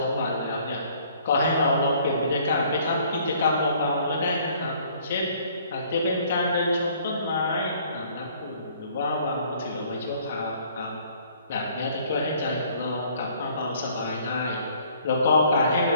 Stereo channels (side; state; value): both; inverted; correlation -0.59